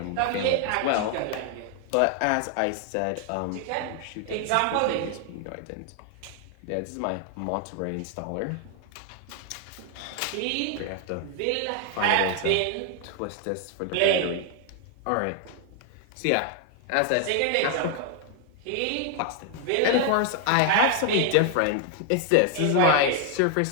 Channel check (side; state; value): both; different; correlation 0.00